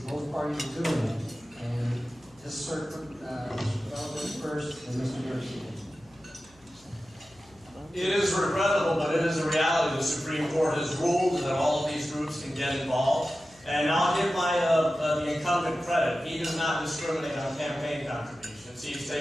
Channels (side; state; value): left; noise; hum, 29 dB below the sound